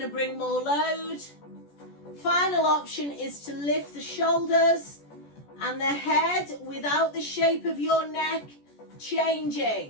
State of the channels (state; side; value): late; right; 14 ms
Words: to bring more load. Final option is to lift the shoulders and the head without the shape of your neck